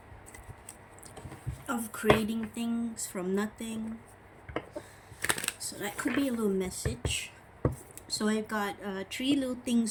of creating things from nothing. So that could be a little message. So I've got 3 little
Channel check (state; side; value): identical; both; correlation 1.00